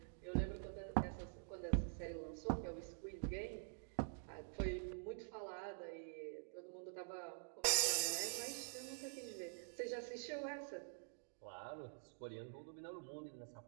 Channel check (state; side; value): silent; left; digital silence